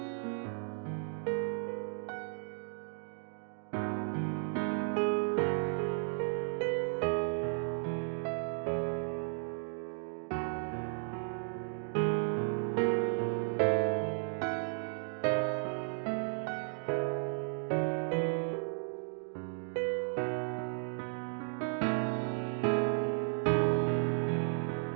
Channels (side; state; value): left; silent; 55 dB below the other